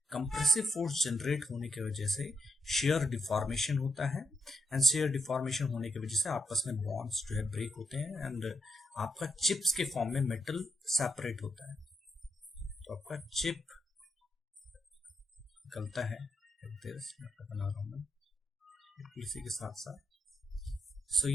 कंप्रेसिव फोर्स जनरेट होने की वजह से share deformation होता है, and share deformation होने की वजह से आपस में बॉन्ड्स जो है ब्रेक होते हैं, एंड आपका चिप्स के फॉर्म में मेटल सेपरेट होता है. तो आपका चिप निकलता है, बना रहा हूं मैं इसी के साथ साथ. सो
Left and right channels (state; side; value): normal; both; correlation 0.80